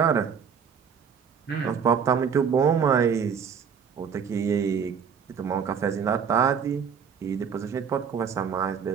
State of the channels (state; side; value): quieter; left; 6.9 dB